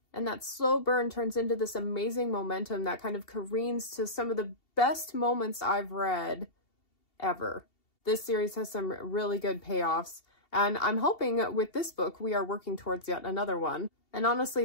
And that slow burn turns into this amazing momentum that kind of careens to some of the best moments I've read ever. This series has some really good payoffs. And I'm hoping with this book, we are working towards yet another one. And honestly,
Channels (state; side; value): late; right; 2.7 ms